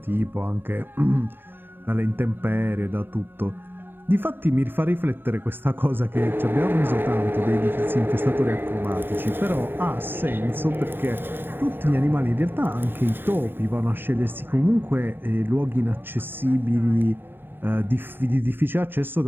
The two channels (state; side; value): late; left; 0.097 ms